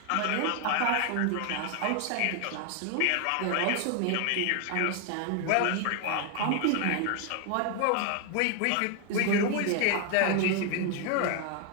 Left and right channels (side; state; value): both; different; correlation 0.01